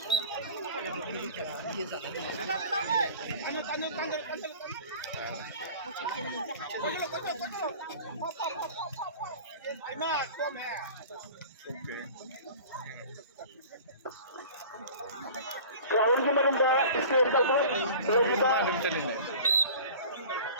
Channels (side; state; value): both; inverted; correlation -0.42